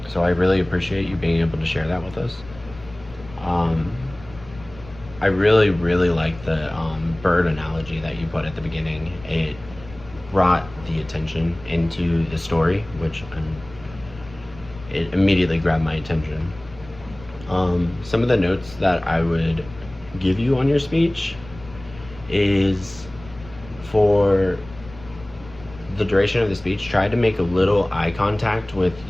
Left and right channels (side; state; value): left; noise; rumble, 19 dB below the sound